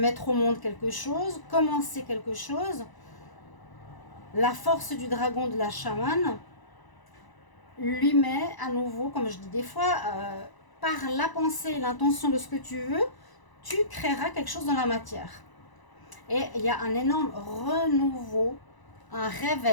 au monde quelque chose, commencer quelque chose. La force du dragon de la chamane lui met à nouveau, comme je dis des fois, par la pensée et l'intention de ce que tu veux, tu créeras quelque chose dans la matière. Et il y a un énorme renouveau, un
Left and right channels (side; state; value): right; late; 1.0 ms